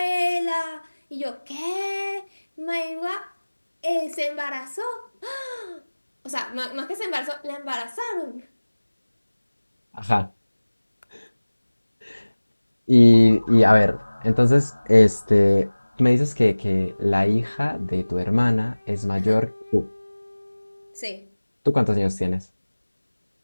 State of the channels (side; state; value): both; inverted; correlation -1.00